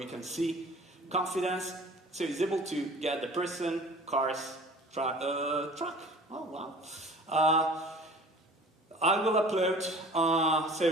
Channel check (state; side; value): normal; both; correlation 0.45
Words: can see confidence. So it's able to get the person, cars, truck. Oh, wow. I will upload, so